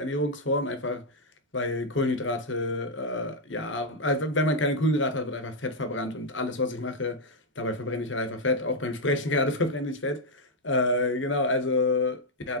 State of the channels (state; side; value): normal; both; correlation -0.01